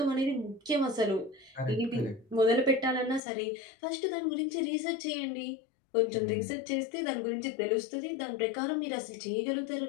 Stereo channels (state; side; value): drops out; right; at 3.2 s